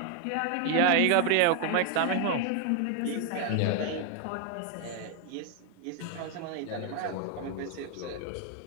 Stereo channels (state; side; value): different; both; correlation 0.01